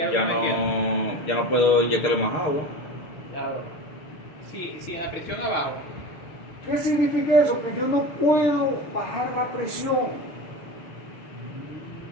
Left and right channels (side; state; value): right; late; 6.6 ms